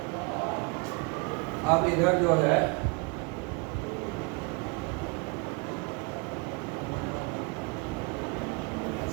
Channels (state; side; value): quieter; left; 30.7 dB